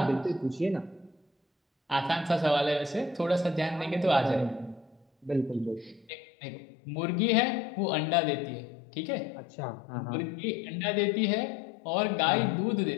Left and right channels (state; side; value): drops out; right; at 6.1 s